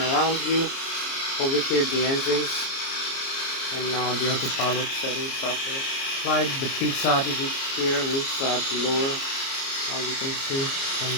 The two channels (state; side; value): late; right; 29 ms